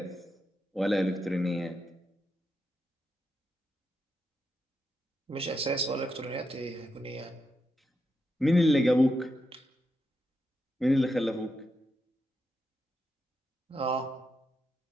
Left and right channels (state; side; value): normal; both; correlation 0.85